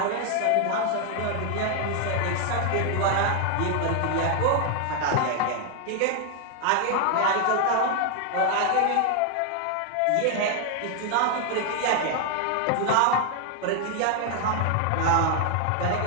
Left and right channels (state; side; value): different; both; correlation 0.00